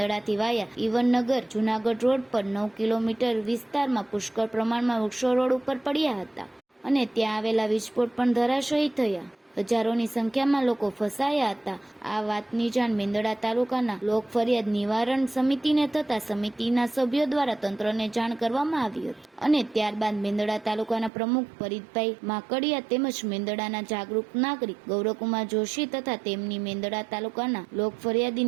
વાયા ઈવનનગર જુનાગઢ રોડ પર 9 કિલોમીટર વિસ્તારમાં પુષ્કળ પ્રમાણમાં વૃક્ષો રોડ ઉપર પડ્યા હતા અને ત્યાં આવેલા વીજપોટ પણ ધરાશયી થયા. હજારોની સંખ્યામાં લોકો ફસાયા હતા. આ વાતની જાણ મેંદરડા તાલુકાના લોક ફરિયાદ નિવારણ સમિતિને થતા સમિતિના સભ્યો દ્વારા તંત્રને જાણ કરવામાં આવી હતી અને ત્યારબાદ મેંદરડા તાલુકાના પ્રમુખ ફરીદભાઈ માકડિયા તેમજ મેંદરડાના જાગૃત નાગરિક ગૌરવકુમાર જોશી તથા તેમની મેંદરડા તાલુકાના લોક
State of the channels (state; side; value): drops out; left; at 21.1 s